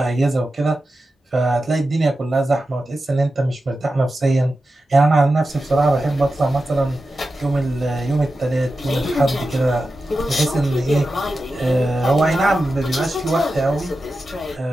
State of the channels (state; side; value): normal; both; correlation 0.92